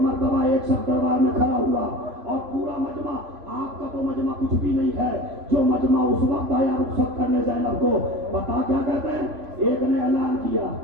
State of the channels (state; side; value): late; left; 3.0 ms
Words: ایک شخص دربار میں کھڑا ہوا اور پورا مجمع، آپ کا تو مجمع کچھ بھی نہیں ہے، جو مجمع اس وقت آیا رخصت کرنے زینب کو، پتا کیا کہتے ہیں؟ ایک نے اعلان کیا